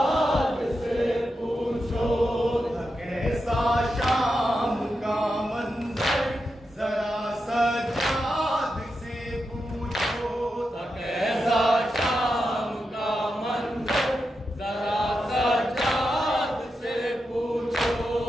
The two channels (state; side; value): normal; both; correlation 0.88